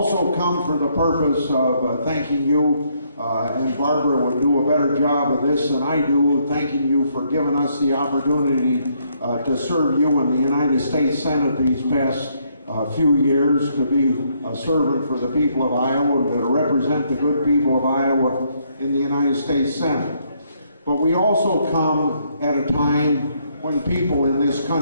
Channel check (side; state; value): both; inverted; correlation -0.72